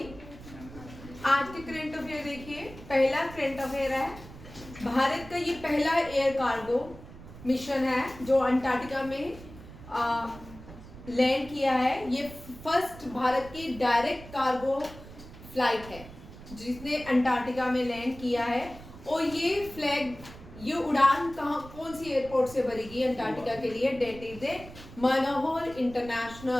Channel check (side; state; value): right; noise; rumble, 16 dB below the sound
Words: आज के करंट अफेयर देखिए। पहला करंट अफेयर है, भारत का ये पहला एयर कार्गो मिशन है जो अंटार्कटिका में लैंड किया है। ये फर्स्ट भारत की डायरेक्ट कार्गो फ्लाइट है जिसने अंटार्कटिका में लैंड किया है। और ये उड़ान कौन सी एयरपोर्ट से भरेगी अंटार्कटिका के लिए? That is a Manohar